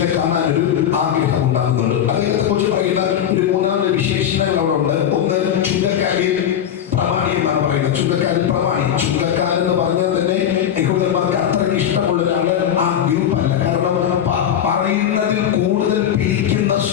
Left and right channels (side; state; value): right; quieter; 9.6 dB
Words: കാണാൻ ഒരു ആഗ്രഹം ഉണ്ടാകുന്നുണ്ട്. അദ്ദേഹത്തെ കുറിച്ച് പറയുന്ന ഒരു 3 വിശേഷണങ്ങൾ അവിടെ ഉണ്ട്. ഒന്ന്, ചുങ്കക്കാരിൽ പ്രമാണി എന്നാണ് പറയുന്നത്. ചുങ്കക്കാരിൽ പ്രമാണി. ചുങ്കക്കാരൻ എന്ന് പറഞ്ഞാൽ തന്നെ യഹൂദന്മാർക്ക് അത്രയ്ക്ക് ഇഷ്ടമുള്ള ഒരാള് ആ ഗ്രൂപ്പ് അല്ല. കാരണം പറയുന്നതിൽ കൂടുതൽ പിരിക്കുന്ന